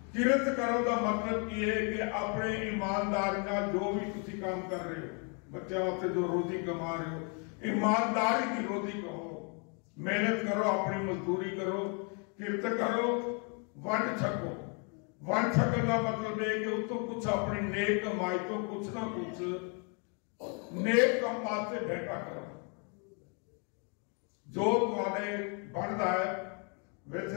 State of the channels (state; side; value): quieter; right; 37.4 dB